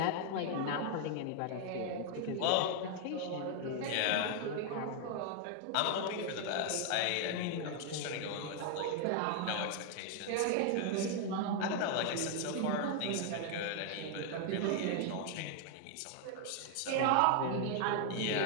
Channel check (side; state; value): both; different; correlation 0.00